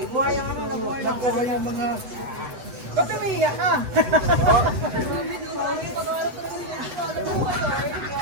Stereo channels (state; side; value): late; left; 7.8 ms